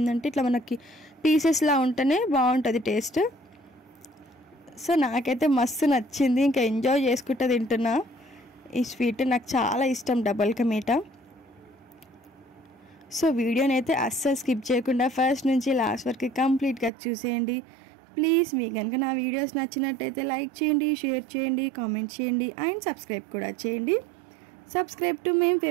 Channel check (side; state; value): left; drops out; at 16.9 s